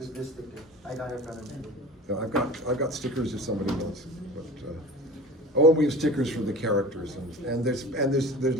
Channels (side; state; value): both; normal; correlation 0.38